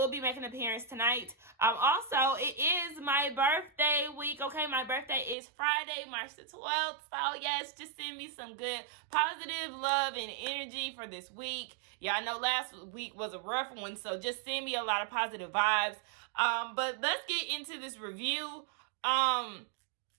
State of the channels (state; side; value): drops out; left; at 5.4 s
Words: be making an appearance tonight. Also, it is my birthday week, okay? My birthday is Friday, March the 12th. So yes, just send me some good positive love and energy for this week. Yeah, I know last week was a rough one, so just send me a lot of positive vibes. But let's get into this review.